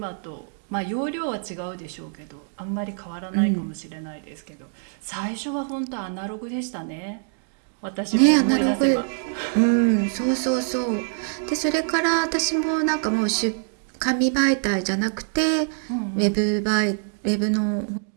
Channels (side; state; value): left; silent; digital silence